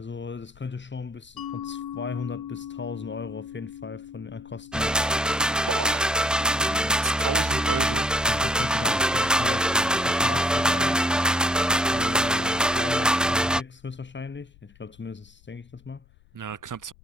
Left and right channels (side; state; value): left; noise; rumble, 28 dB below the sound